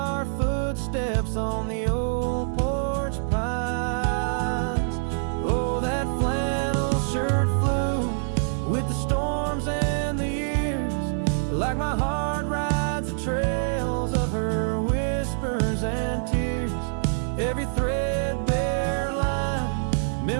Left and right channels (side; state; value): left; silent; digital silence